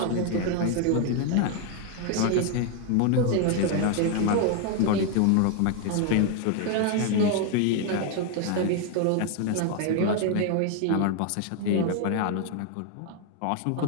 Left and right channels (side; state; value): both; different; correlation 0.00